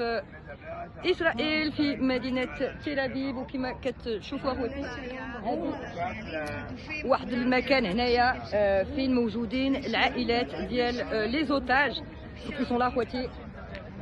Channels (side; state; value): both; identical; correlation 1.00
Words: إسرائيل في مدينة تل أبيب، وكما كتشوفوا خواتي واحد المكان هنايا فين موجودين العائلات ديال لي زوتاج qui sont là خواتي.